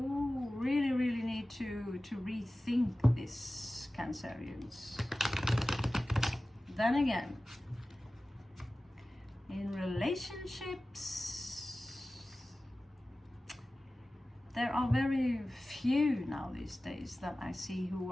really, really need to rethink this, Cancerians. Then again, in relationships, there are very few now these days that I see who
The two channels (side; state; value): both; normal; correlation 0.96